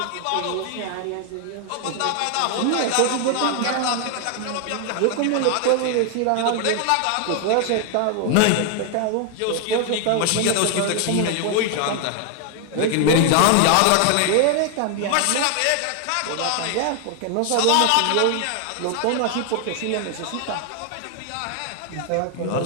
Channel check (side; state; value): both; different; correlation 0.00